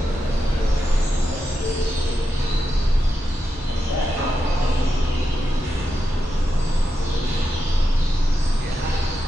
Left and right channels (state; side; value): normal; both; correlation 0.88